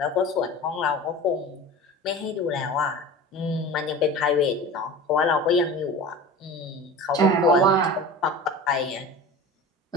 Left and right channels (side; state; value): both; normal; correlation 0.35